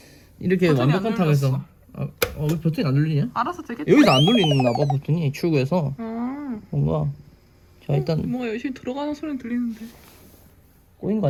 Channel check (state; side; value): identical; both; correlation 1.00